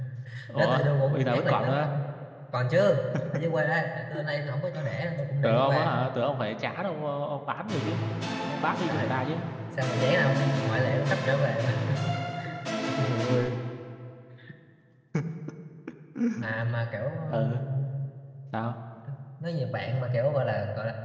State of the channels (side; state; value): both; identical; correlation 1.00